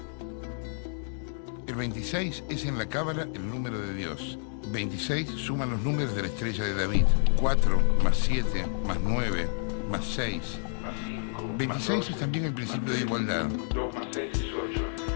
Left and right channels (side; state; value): right; silent; digital silence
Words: El 26 es en la cábala el número de Dios. 26 suman los números de la estrella de David. 4 más 7 más 9 más 6 más 5. 26 es también el principio de igualdad. 2 más 6 es 8.